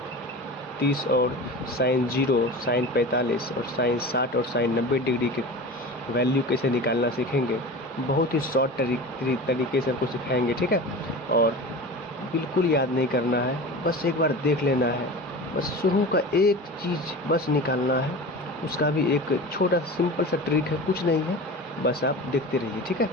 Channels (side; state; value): both; normal; correlation 0.32